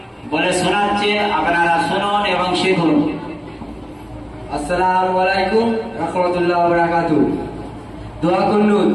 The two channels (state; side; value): identical; both; correlation 1.00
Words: বলে শোনাচ্ছে, আপনারা শুনুন এবং শিখুন। আসসালামু আলাইকুম রাহমাতুল্লাহি ওয়া বারাকাতুহু। দোয়া কুনুত।